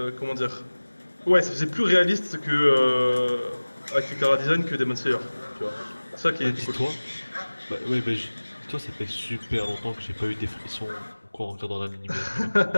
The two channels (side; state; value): both; inverted; correlation -1.00